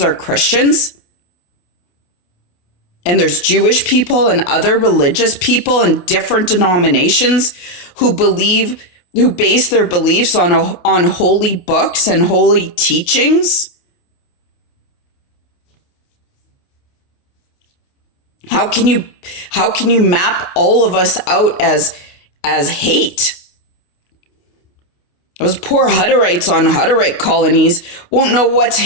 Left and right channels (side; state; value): right; late; 28 ms